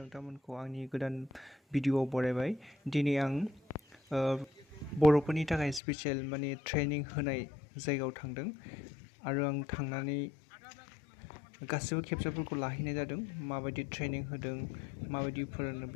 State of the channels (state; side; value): drops out; right; at 5.8 s